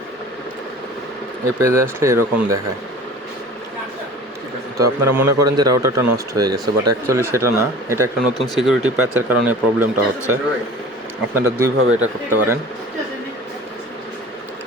এই পেজে আসলে এরকম দেখায়। তো আপনারা মনে করেন যে রাউটারটা নষ্ট হয়ে গেছে, বাট অ্যাকচুয়ালি সেটা না। এটা একটা নতুন সিকিউরিটি প্যাচের কারণে প্রবলেমটা হচ্ছে। আপনারা দুইভাবে এটা করতে পারেন।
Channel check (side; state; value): both; normal; correlation 0.41